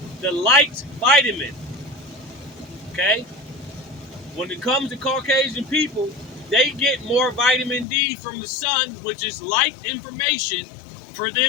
vitamin. Okay? When it comes to Caucasian people, they get more vitamin D from the sun, which is light information, for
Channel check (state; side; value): drops out; right; at 7.9 s